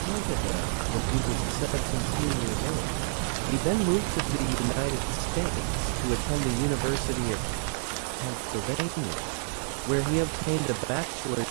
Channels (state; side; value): silent; left; 59 dB below the other